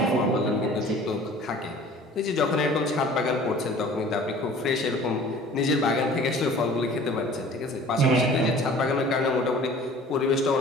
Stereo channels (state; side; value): normal; both; correlation 0.47